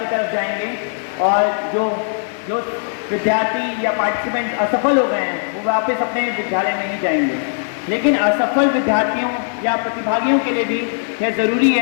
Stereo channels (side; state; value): right; silent; digital silence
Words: तरफ जाएंगे, और जो विद्यार्थी या पार्टिसिपेंट्स असफल हो गए हैं वो वापस अपने विद्यालय में ही जाएंगे। लेकिन असफल विद्यार्थियों या प्रतिभागियों के लिए भी यह ज़रूरी